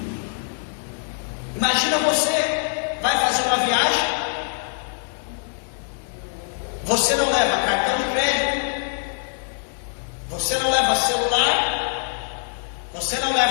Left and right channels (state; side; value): silent; right; 63 dB below the other